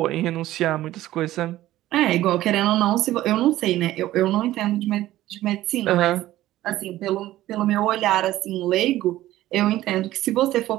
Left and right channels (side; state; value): left; quieter; 15.0 dB